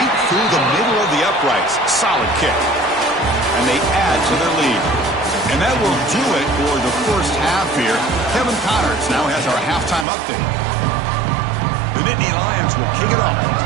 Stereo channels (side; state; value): left; drops out; at 10.1 s